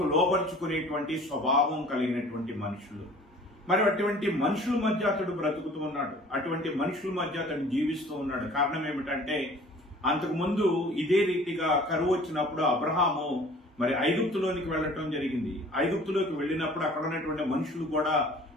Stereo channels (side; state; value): both; normal; correlation 0.49